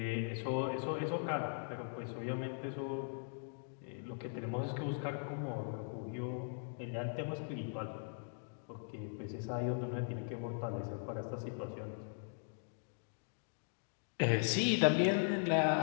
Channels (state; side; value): silent; right; digital silence